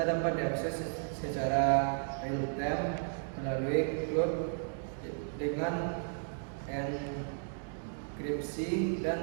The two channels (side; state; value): left; silent; digital silence